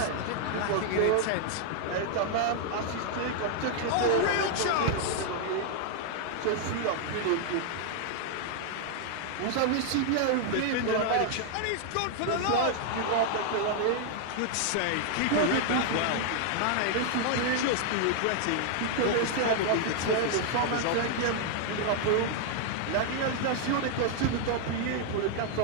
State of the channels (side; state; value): both; different; correlation 0.00